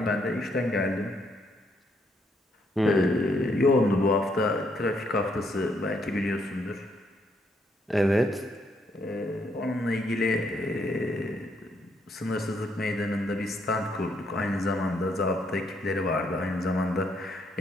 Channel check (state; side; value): normal; both; correlation 0.73